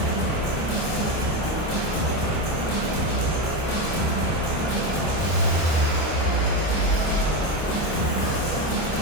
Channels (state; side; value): late; right; 25 ms